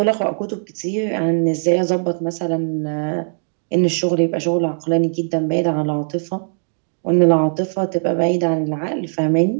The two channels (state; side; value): silent; left; digital silence